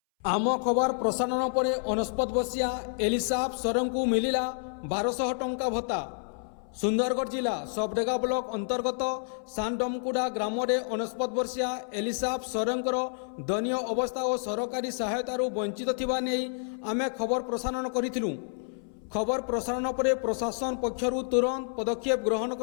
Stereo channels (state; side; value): silent; right; 58 dB below the other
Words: आम खबर प्रसारण पर 69 वर्षीया एलिसाब सरन को मिलिला 1200 टंका भत्ता। सुंदरगढ़ जिला सबडेगा ब्लॉक अंतर्गत सानडमकुड़ा ग्राम में 69 वर्षीया एलिसाब सरंकर दयनीय अवस्था और सरकारी सहायतार वंचित थिबा नै आमे खबर प्रसारण करिथिलु। खबर प्रसारण पर प्रशासन पक्षरु तुरंत पदक्षेप ग्रहण